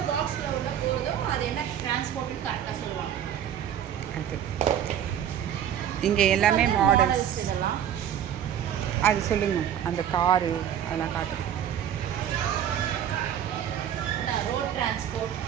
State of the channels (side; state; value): left; quieter; 9.8 dB